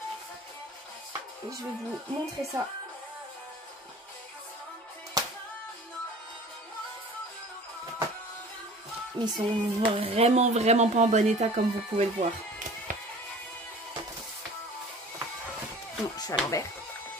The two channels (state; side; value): normal; both; correlation 0.44